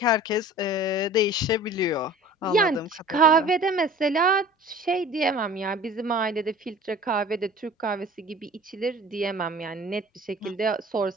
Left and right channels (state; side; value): normal; both; correlation 0.44